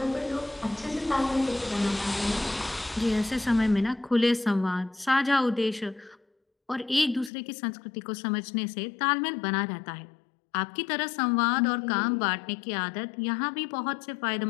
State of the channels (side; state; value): right; drops out; at 7.3 s